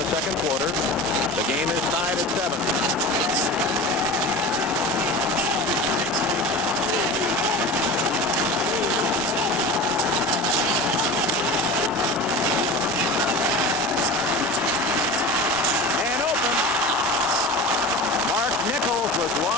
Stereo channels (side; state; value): both; normal; correlation 0.32